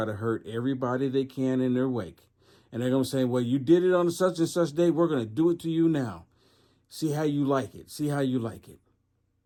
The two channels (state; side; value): identical; both; correlation 1.00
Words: to hurt everybody they can in their wake. And they're going to say, well, you did it on such and such day. We're going to do it to you now. See how you like it. See how you like it.